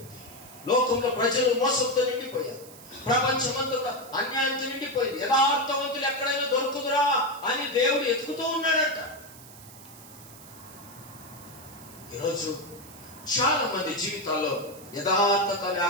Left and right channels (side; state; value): right; noise; hiss, 19 dB below the sound